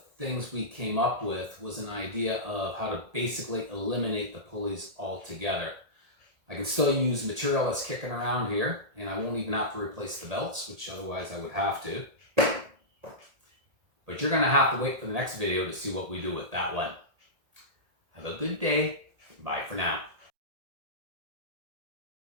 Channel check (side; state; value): left; late; 1.8 ms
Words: things we came up with was an idea of how to basically eliminate the pulleys altogether. I can still use material that's kicking around here, and I won't even have to replace the belts, which otherwise I would have to. But you're going to have to wait for the next video to see what we do with that one. Have a good day. Bye for now.